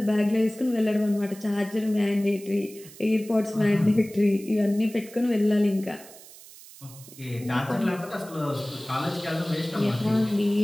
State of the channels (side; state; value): right; noise; hiss, 19 dB below the sound